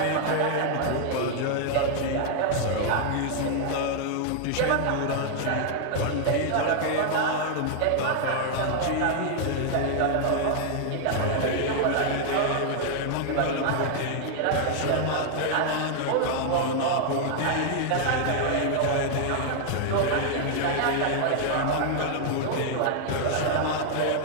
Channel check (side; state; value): both; different; correlation 0.00